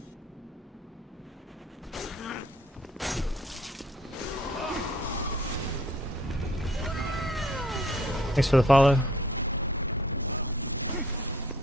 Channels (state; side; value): normal; both; correlation 0.58